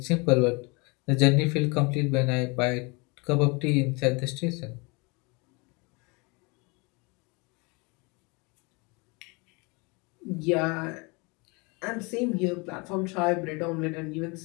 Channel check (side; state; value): right; quieter; 29.0 dB